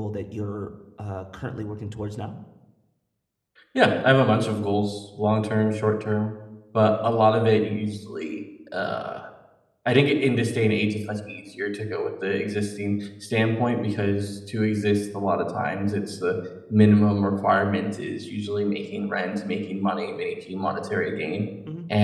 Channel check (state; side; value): identical; both; correlation 1.00